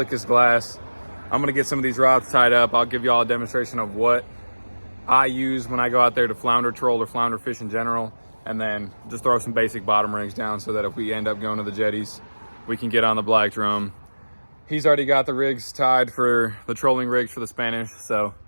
as glass. I'm gonna get some of these rods tied up. I'll give you all a demonstration of what I use when I go out there to flounder troll or flounder fish in general, and then just throw some basic bottom rigs down so that if we end up going to the jetties, we can get on the black drum. He's already got the rigs tied for the trolling rigs for the Spanish, so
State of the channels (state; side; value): inverted; both; correlation -1.00